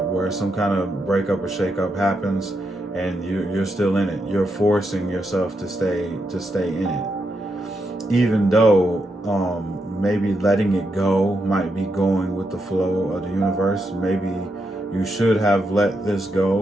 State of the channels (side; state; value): both; normal; correlation 0.82